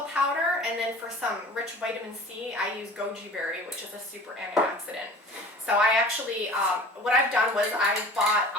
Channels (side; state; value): both; normal; correlation 0.42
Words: powder, and then for some rich vitamin C, I use goji berry, which is a super antioxidant. So I actually, what I've done was I bought